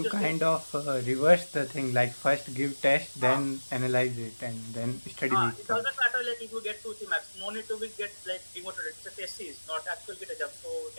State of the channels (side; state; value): both; inverted; correlation -1.00